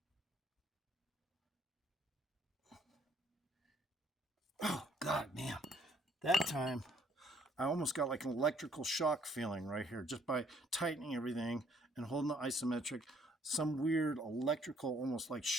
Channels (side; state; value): both; normal; correlation 0.64